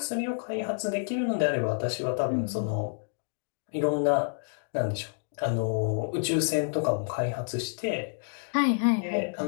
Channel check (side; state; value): right; silent; digital silence